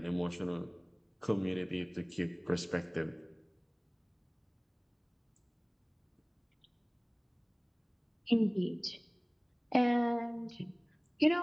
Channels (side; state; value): both; identical; correlation 1.00